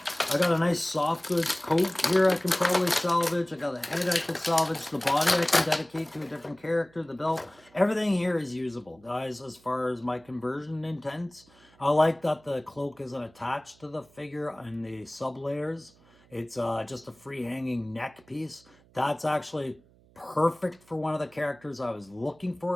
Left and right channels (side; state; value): right; noise; hum, 29 dB below the sound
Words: I got a nice soft goods coat here I can probably salvage. I got a head I can salvage. The body I can dedicate to a different character. The belt. Everything here is usable, guys, as far as my conversion intents. I like that the cloak isn't attached to the figure and the sub layers. It's just a free hanging neck piece. That's actually perfect for one of the characters I was looking